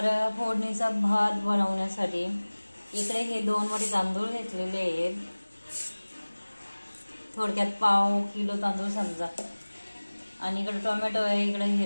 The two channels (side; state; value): both; inverted; correlation -1.00